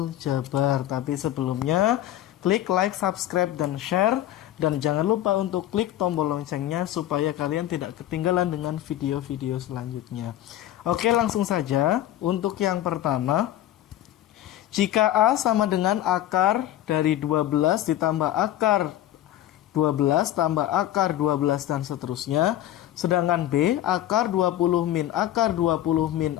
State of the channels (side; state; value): right; quieter; 13.0 dB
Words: Tapi sebelumnya klik like, subscribe, dan share. Dan jangan lupa untuk klik tombol loncengnya supaya kalian tidak ketinggalan dengan video-video selanjutnya. Oke, langsung saja. Untuk yang pertama, jika A sama dengan akar dari 12 ditambah akar 12 tambah akar 12 dan seterusnya. Sedangkan B akar 20 min akar 20 min